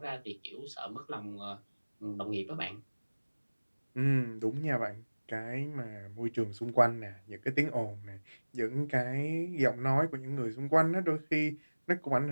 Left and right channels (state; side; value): inverted; both; correlation -1.00